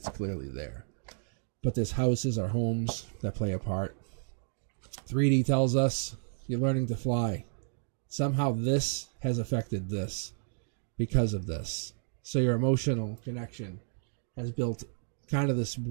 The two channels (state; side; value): silent; left; digital silence